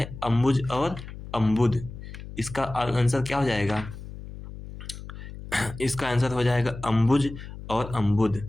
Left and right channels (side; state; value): left; noise; hum, 12 dB below the sound